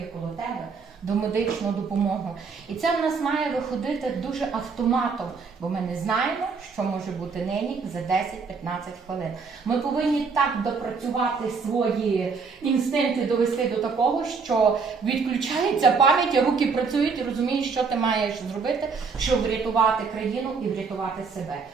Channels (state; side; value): quieter; left; 5.0 dB